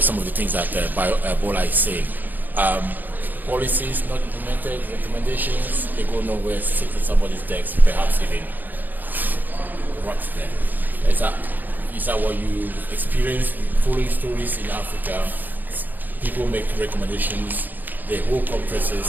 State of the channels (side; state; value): left; late; 0.086 ms